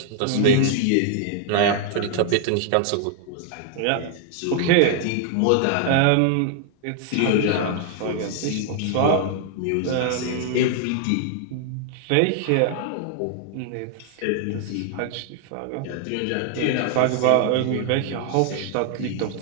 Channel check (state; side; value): different; both; correlation 0.00